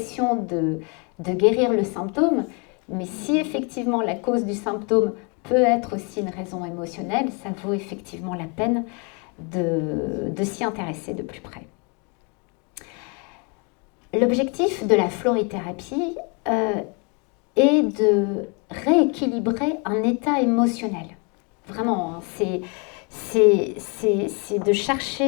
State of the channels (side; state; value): right; quieter; 33.7 dB